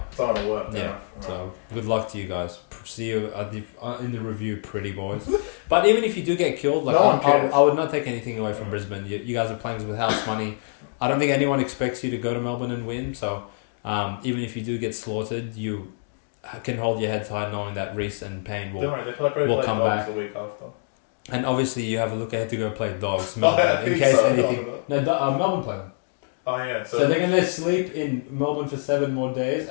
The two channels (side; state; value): right; silent; digital silence